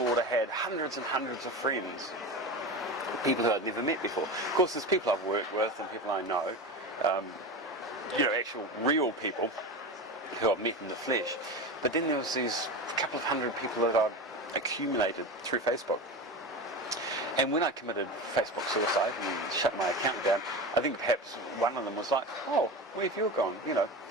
had hundreds and hundreds of friends, people who I'd never met before. Of course, there's people I've worked with and people I know, actual real people who I've met in the flesh. But then there was these couple of hundred people that I'd accumulated through Facebook. And when I committed Facebook suicide and shut my account down, I think perhaps one of them was like, oh, where have you gone?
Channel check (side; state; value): both; normal; correlation 0.25